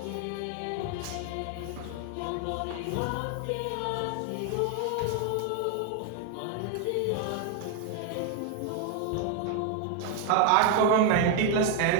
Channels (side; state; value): both; different; correlation 0.01